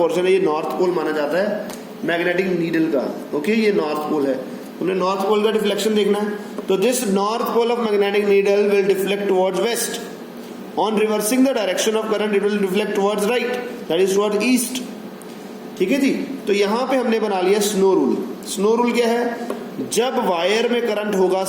है, ये नॉर्थ पोल माना जाता है मैग्नेटिक नीडल का। ओके, ये नॉर्थ पोल है। उन्हें नॉर्थ पोल का डिफ्लेक्शन देखना है। तो this north pole of magnetic needle will deflect towards west. On reversing the direction of current it will deflect towards right, that is towards east. ठीक है जी, तो यहां पे हमने बना लिया स्नो रूल। स्नो रूल क्या है? जब वायर में करंट होगा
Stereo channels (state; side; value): identical; both; correlation 1.00